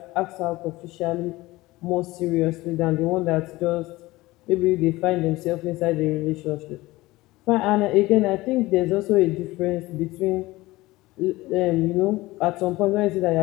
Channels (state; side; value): quieter; right; 19.5 dB